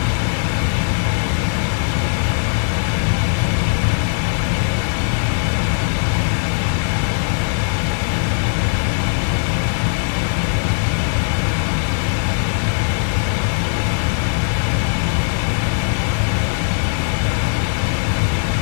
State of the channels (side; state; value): right; silent; digital silence